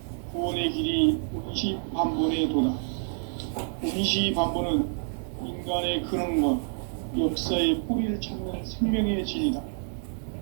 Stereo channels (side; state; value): left; silent; digital silence